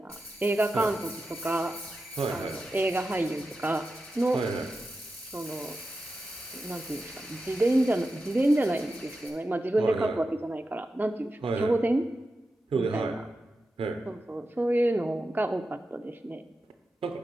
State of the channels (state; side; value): normal; both; correlation 0.91